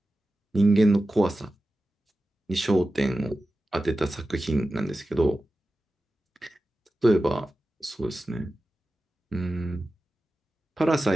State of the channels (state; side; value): normal; both; correlation 0.94